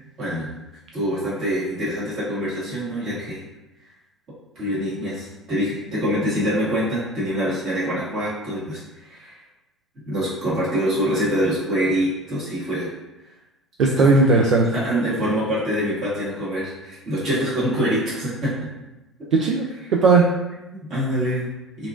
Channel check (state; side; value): normal; both; correlation 0.37